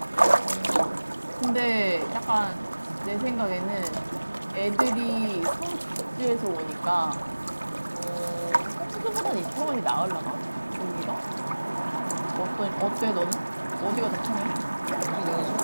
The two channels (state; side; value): inverted; both; correlation -1.00